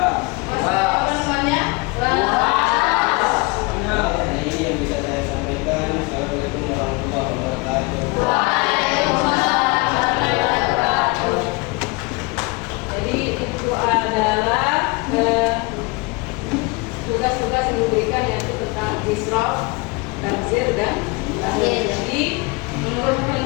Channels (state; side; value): quieter; right; 26.8 dB